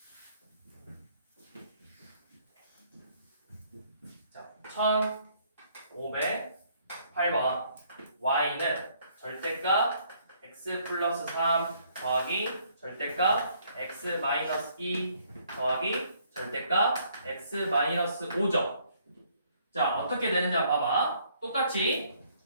자, 1508번 y는 절대값 x 플러스 3 더하기 절대값 x 마이너스 2 더하기 절대값 x 마이너스 5죠. 자, 어떻게 되는지 한번 봐봐. 똑같이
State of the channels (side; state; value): both; inverted; correlation -0.65